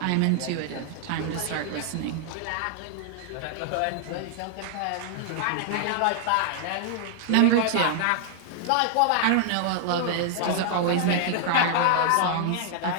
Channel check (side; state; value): both; different; correlation -0.01